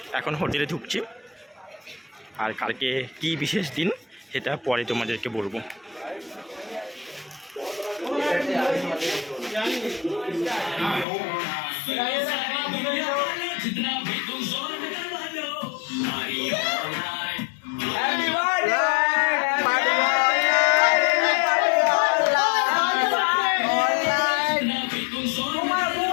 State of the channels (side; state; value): right; drops out; at 11.1 s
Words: এখন হোটেলে ঢুকছি, আর কালকে কি বিশেষ দিন সেটা পরে তোমাদেরকে বলবো।